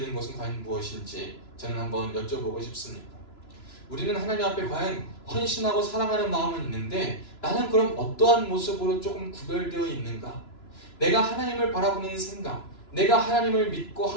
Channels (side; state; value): right; late; 2.9 ms